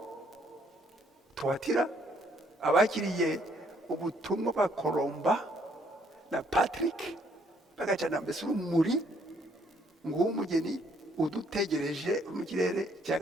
Tuwatira abakiriye ubutumwa ba Koromba na Patrick bagacana mbese urumuri nguwo umugeni udutegereje mu kirere cya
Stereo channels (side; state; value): both; normal; correlation 0.67